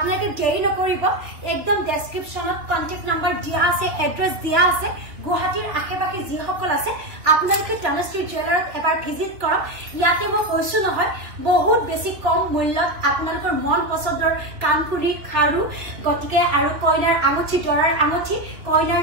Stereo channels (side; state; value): left; late; 2.8 ms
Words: দেৰি নকৰিব একদম ডেসক্ৰিপশনত কন্টাক্ট নাম্বাৰ দিয়া আছে এড্ৰেছ দিয়া আছে গুৱাহাটীৰ আশেপাশে যিসকল আছে আপোনালোকে তনুশ্ৰী জুৱেলাৰত এবাৰ ভিজিট কৰক ইয়াতে মই কৈছো নহয় বহুত বেছি কম মূল্যত আপোনালোকৰ মন পছন্দৰ কানপুৰী খাৰু গতিকে আৰু কইনাৰ আঙুঠি দৰাৰ আঙুঠি কইনাৰ